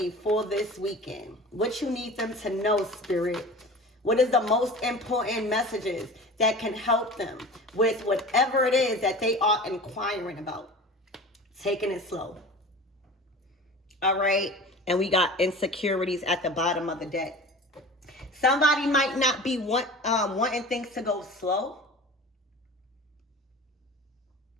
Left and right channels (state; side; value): normal; both; correlation 0.37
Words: for this weekend. What you need them to know, spirit. What is the most important messages that can help them with whatever it is that they are inquiring about? Taking it slow. All right. And we got insecurities at the bottom of the deck. Somebody might not be wanting things to go slow.